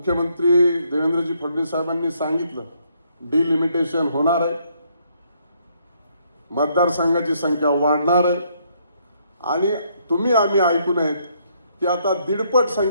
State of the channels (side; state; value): both; inverted; correlation -0.71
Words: देवेंद्रजी फडणवीस साहेबांनी सांगितलं डिलिमिटेशन होणार आहे, मतदारसंघाची संख्या वाढणार आहे आणि तुम्ही आम्ही ऐकून आहेत की आता 1.5पट